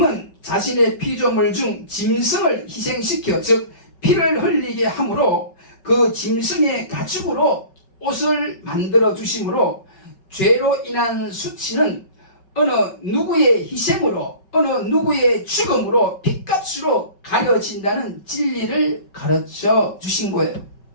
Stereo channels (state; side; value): late; right; 5.3 ms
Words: 자신의 피조물 중 짐승을 희생시켜, 즉 피를 흘리게 함으로 그 짐승의 가죽으로 옷을 만들어 주심으로 죄로 인한 수치는 어느 누구의 희생으로, 어느 누구의 죽음으로, 핏값으로 가려진다는 진리를 가르쳐 주신 거예요.